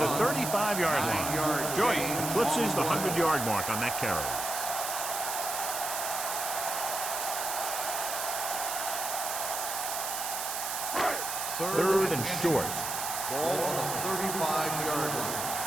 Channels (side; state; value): right; noise; hiss, 3 dB below the sound